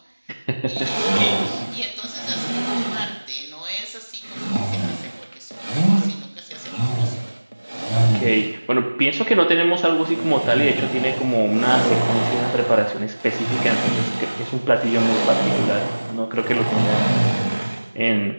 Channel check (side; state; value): both; inverted; correlation -1.00